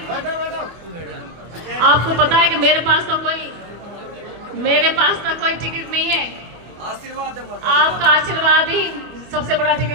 आपको पता है कि मेरे पास तो कोई टिकट नहीं है। आपका आशीर्वाद ही सबसे बड़ा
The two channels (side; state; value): left; late; 25 ms